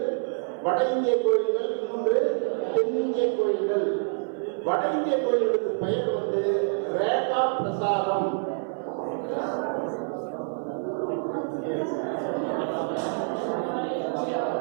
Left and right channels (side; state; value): left; silent; 60 dB below the other